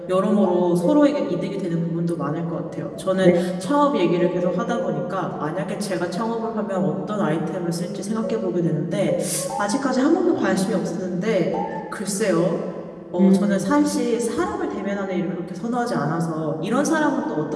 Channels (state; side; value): identical; both; correlation 1.00